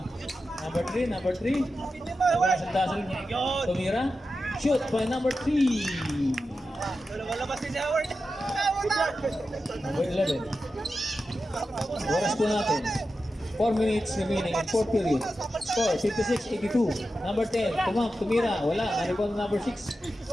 number 3. Number 3. Nagkasal-dasal. Tumira. Shoot by number 3. Walabas si Howard. Number 11. Oras po natin. 4 minutes remaining in 4th period. Score 56-82. Number 10. Tumira. Wala. Narito na number 6.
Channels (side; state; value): both; normal; correlation 0.91